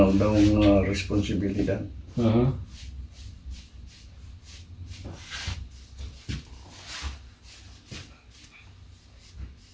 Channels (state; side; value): identical; both; correlation 1.00